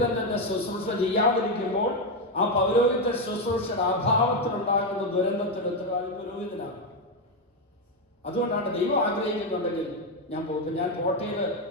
തന്നെ ശുശ്രൂഷ ചെയ്യാതിരിക്കുമ്പോൾ ആ പൗരോഹിത ശുശ്രൂഷയുടെ അഭാവത്തിലുണ്ടാകുന്ന ദുരന്തത്തിന് ഉത്തരവാദി പുരോഹിതനാണ്. അതുകൊണ്ടാണ് ദൈവം ആഗ്രഹിക്കുന്നുണ്ടെങ്കിൽ ഞാൻ പോകും. ഞാൻ കോട്ടയിൽ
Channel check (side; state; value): both; normal; correlation 0.06